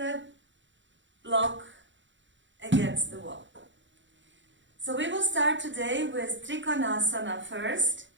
block against the wall. So we will start today with Trikonasana first.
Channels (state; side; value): late; left; 0.54 ms